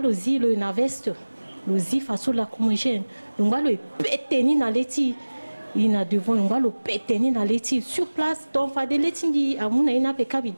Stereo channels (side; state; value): both; inverted; correlation -1.00